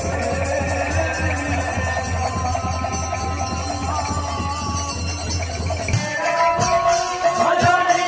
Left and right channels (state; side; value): identical; both; correlation 1.00